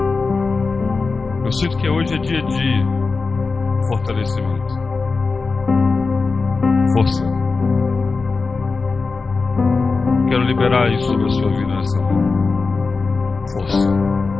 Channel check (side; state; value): right; quieter; 4.2 dB